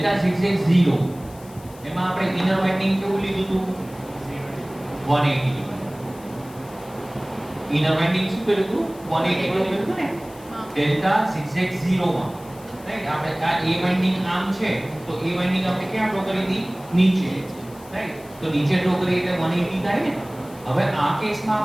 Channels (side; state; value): left; noise; hiss, 23 dB below the sound